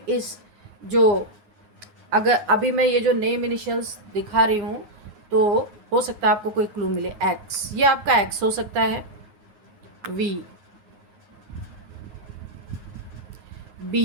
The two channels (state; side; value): late; left; 9.5 ms